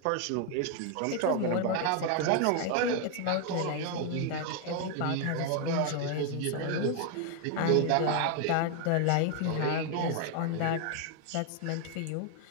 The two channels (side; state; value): both; different; correlation 0.00